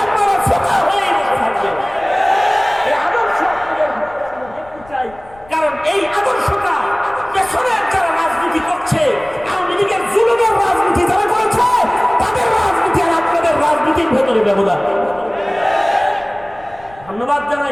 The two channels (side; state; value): left; noise; rumble, 24 dB below the sound